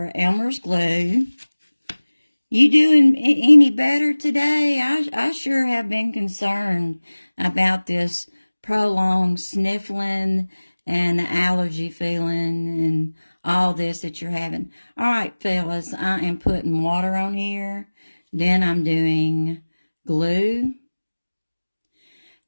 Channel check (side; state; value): both; inverted; correlation -1.00